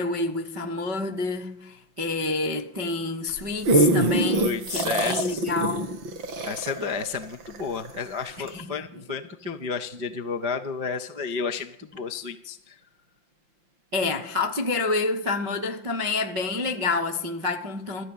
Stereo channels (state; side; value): late; left; 5.7 ms